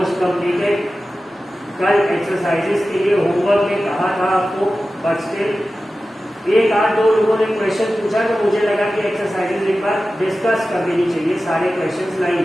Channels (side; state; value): both; normal; correlation 0.94